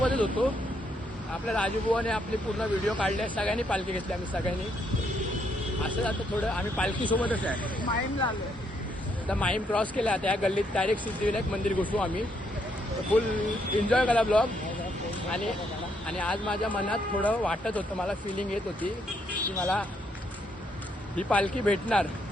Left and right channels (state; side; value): normal; both; correlation 0.74